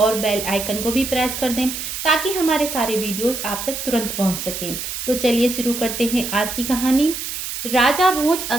बेल आइकन को भी प्रेस कर दें ताकि हमारे सारे वीडियोस आप तक तुरंत पहुंच सकें। तो चलिए शुरू करते हैं आज की कहानी। राजा भोज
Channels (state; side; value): noise; right; hiss, 6 dB below the sound